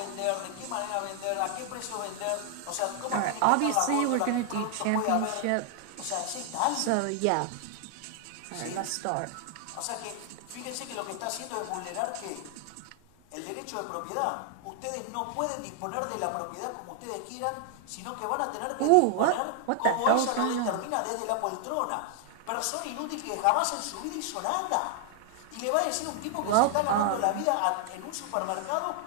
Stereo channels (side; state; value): both; different; correlation 0.00